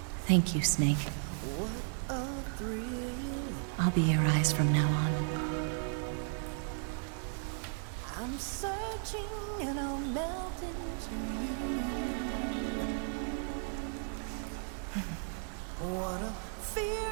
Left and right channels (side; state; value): left; silent; 54 dB below the other